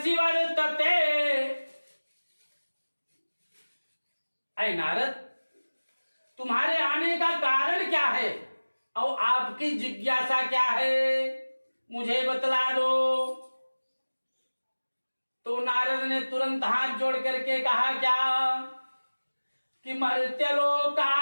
वर्तते। ऐ नारद, तुम्हारे आने का कारण क्या है और आपकी जिज्ञासा क्या है, मुझे बतला दो। तो नारद ने तुरंत हाथ जोड़ करके कहा क्या कि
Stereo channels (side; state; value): both; inverted; correlation -1.00